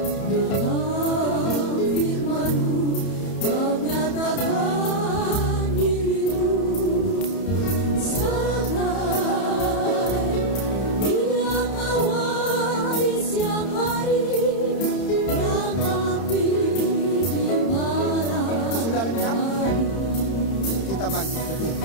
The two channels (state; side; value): late; right; 31 ms